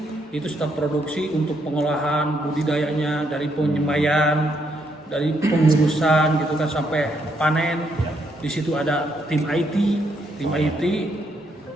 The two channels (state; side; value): normal; both; correlation 0.75